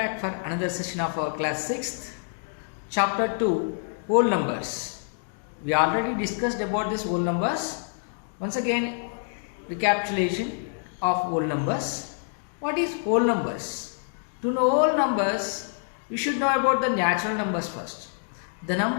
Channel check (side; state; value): right; silent; digital silence